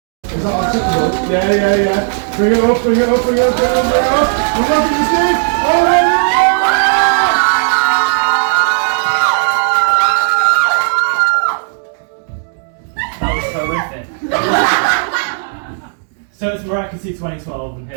Is that acceptable? Yeah. Bring it up. We're not going to see. That was horrific. So it's Miraculous 2012, and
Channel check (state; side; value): silent; left; digital silence